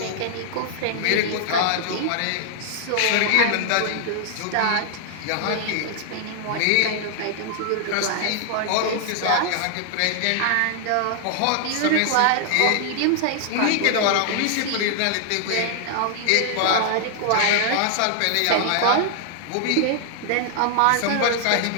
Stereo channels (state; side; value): different; both; correlation -0.01